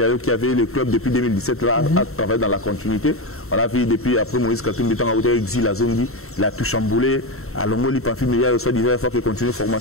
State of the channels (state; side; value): late; right; 0.63 ms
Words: qui avait le club depuis 2017 là, à travailler dans la continuité. On l'a vu depuis après Moïse Katumbi, exil à Zongi, il a tout chamboulé. À Longoli, Pamphile Miayo soit disait il faut qu'il continue la